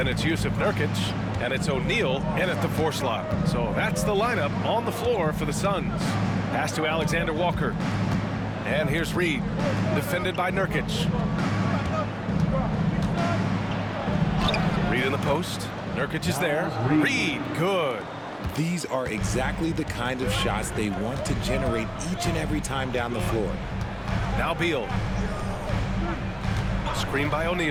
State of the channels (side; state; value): both; identical; correlation 1.00